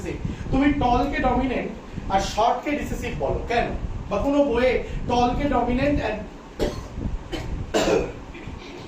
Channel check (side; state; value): both; identical; correlation 1.00